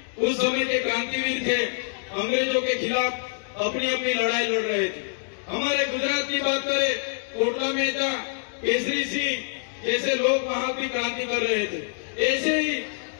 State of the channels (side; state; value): right; silent; digital silence